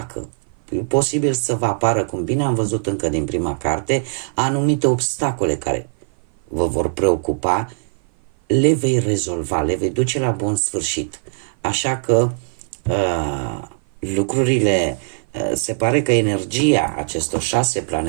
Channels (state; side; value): silent; left; 56 dB below the other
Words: e posibil să vă apară, cum bine am văzut încă din prima carte, anumite obstacole care vă vor preocupa, le vei rezolva, le vei duce la bun sfârșit. Așa că lucrurile, se pare că energia acestor 6